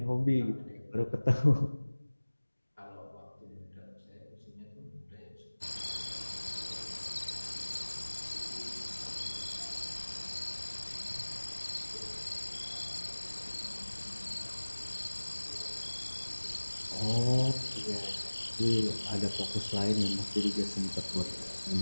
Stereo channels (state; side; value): inverted; both; correlation -1.00